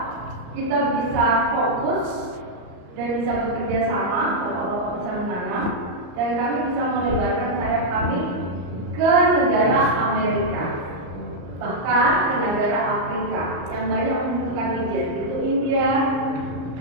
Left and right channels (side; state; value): left; late; 34 ms